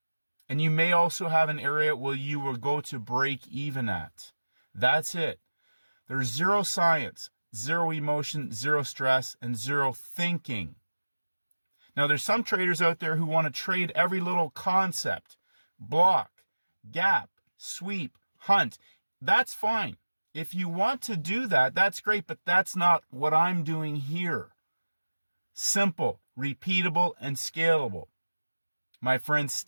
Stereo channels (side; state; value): both; inverted; correlation -1.00